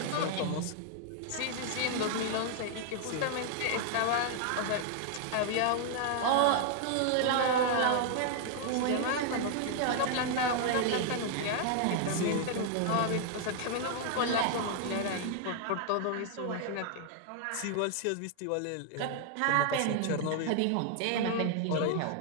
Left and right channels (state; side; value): different; both; correlation 0.00